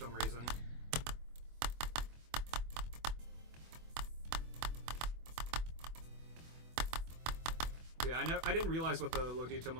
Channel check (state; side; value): late; left; 24 ms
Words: reason. Yeah, I didn't realize what the low detail